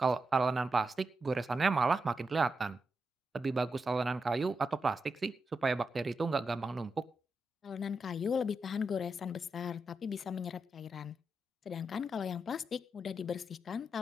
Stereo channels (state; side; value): normal; both; correlation 0.87